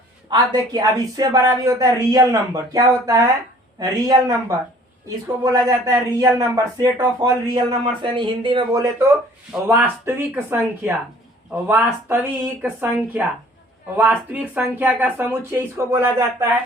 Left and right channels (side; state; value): both; normal; correlation 0.53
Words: आप देखिए अब इससे बड़ा भी होता है रियल नंबर। क्या होता है, रियल नंबर, इसको बोला जाता है real number, set of all real number, यानी हिंदी में बोले तो वास्तविक संख्या, वास्तविक संख्या, वास्तविक संख्या का समुच्चय इसको बोला जाता